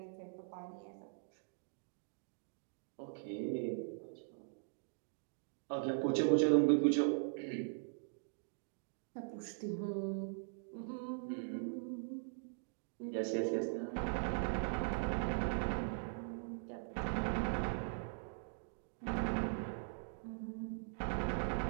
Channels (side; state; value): left; silent; digital silence